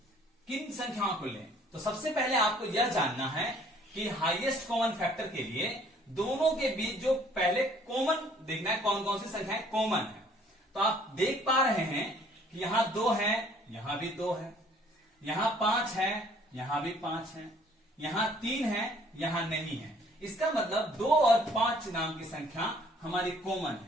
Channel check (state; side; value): normal; both; correlation 0.58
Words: किन संख्याओं को लें? तो सबसे पहले आपको यह जानना है कि हाईएस्ट कॉमन फैक्टर के लिए दोनों के बीच जो पहले कॉमन देखना है, कौन कौन सी संख्याएं कॉमन है। तो आप देख पा रहे हैं कि यहां 2 है, यहां भी 2 है, यहां 5 है, यहां भी 5 है, यहां 3 है, यहां नहीं है। इसका मतलब 2 और 5 नाम की संख्या हमारी कॉमन